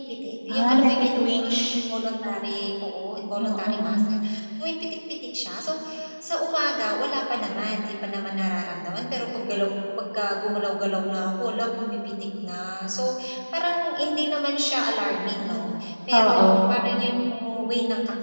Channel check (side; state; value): both; inverted; correlation -1.00